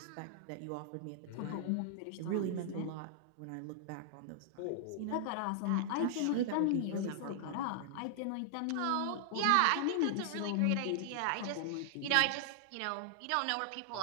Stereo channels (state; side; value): different; both; correlation -0.01